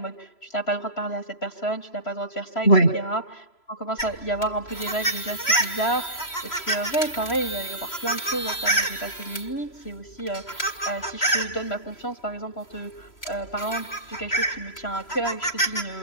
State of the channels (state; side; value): late; right; 3.0 ms